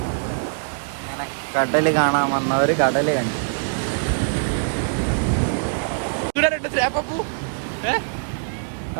അങ്ങനെ കടൽ കാണാൻ വന്നവർ കടൽ കണ്ടു.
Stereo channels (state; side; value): silent; left; digital silence